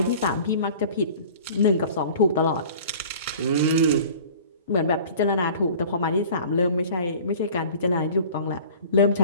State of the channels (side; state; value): both; inverted; correlation -0.44